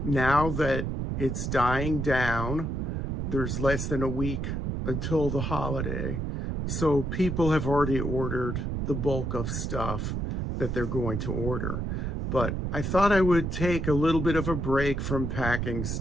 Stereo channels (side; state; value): right; noise; rumble, 2 dB below the sound